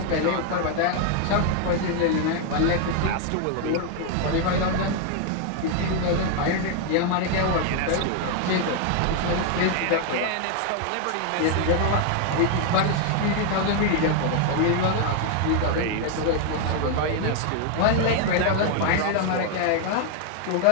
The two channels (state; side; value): different; both; correlation 0.01